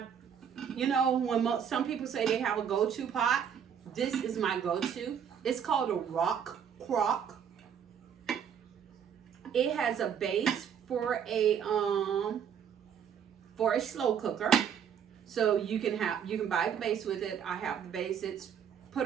you know, when some people say they have a go-to pot, this is my go-to. It's called a rock crock. It has a base for a slow cooker. So you can buy the base with it. I have the base. It's put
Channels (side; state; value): left; quieter; 8.0 dB